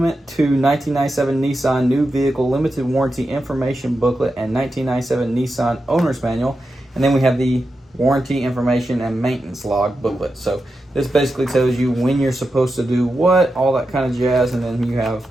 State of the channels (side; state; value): both; normal; correlation 0.89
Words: to 1997 Nissan New Vehicle Limited Warranty Information booklet and 1997 Nissan owner's manual. And then we have the warranty information and maintenance log booklet. So this basically tells you when you're supposed to do what, all that kind of jazz, and then you have